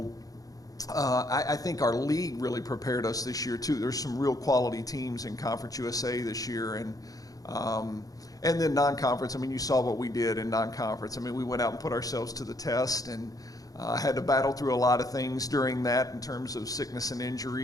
I think our league really prepared us this year too. There's some real quality teams in Conference USA this year. And then non-conference, you saw what we did in non-conference. we went out and put ourselves to the test, and had to battle through a lot of things during that in terms of sickness and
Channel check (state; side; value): late; right; 0.17 ms